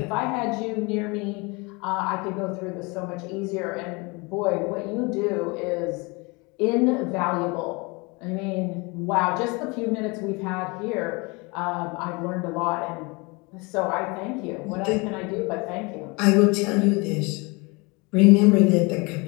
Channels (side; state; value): right; quieter; 27.6 dB